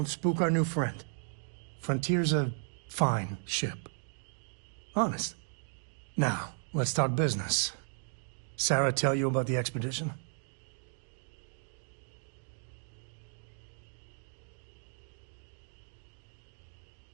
spook our new friend. Frontier's a fine ship. Honest. Now, let's talk business. Sarah tell you about the expedition?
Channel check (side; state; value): left; silent; 54 dB below the other